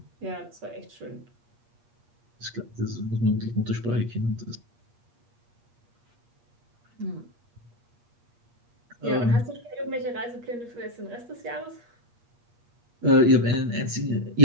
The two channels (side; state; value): left; late; 8.4 ms